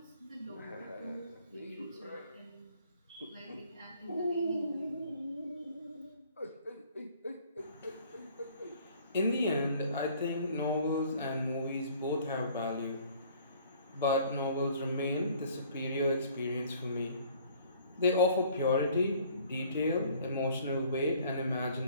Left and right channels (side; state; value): both; inverted; correlation -0.55